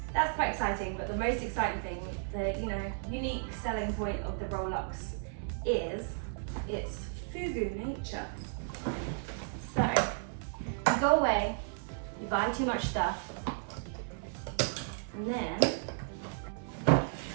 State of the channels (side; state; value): left; silent; 55 dB below the other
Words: that's quite exciting, but the most exciting thing, the unique selling point of the Rollux is its FUGU nature. So you go away, you buy too much stuff, and then